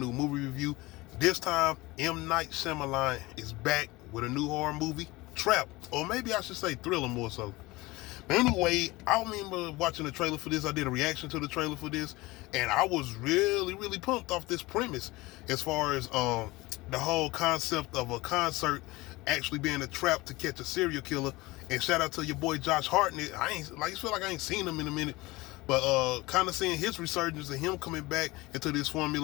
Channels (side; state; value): right; quieter; 21.3 dB